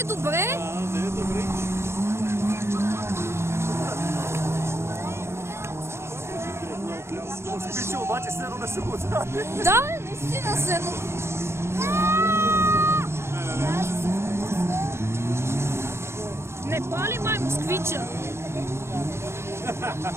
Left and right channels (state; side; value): late; left; 0.13 ms